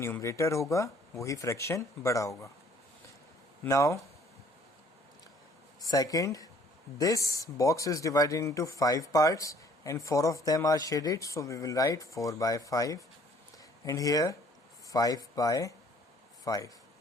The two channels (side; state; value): both; normal; correlation 0.58